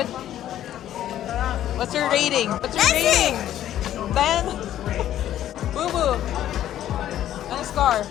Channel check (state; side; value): quieter; right; 11.9 dB